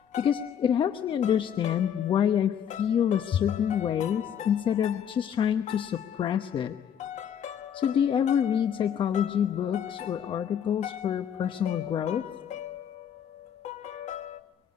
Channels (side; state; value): right; quieter; 8.6 dB